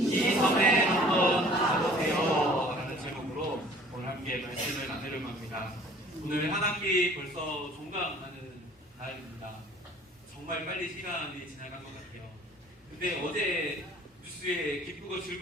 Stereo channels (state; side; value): normal; both; correlation 0.52